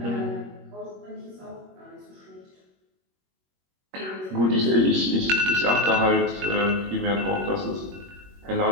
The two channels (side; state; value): left; late; 21 ms